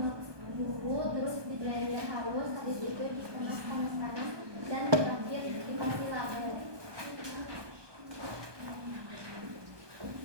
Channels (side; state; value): left; late; 1.2 ms